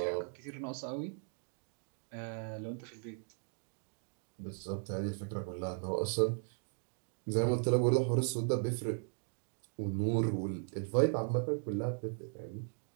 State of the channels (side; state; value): left; silent; 53 dB below the other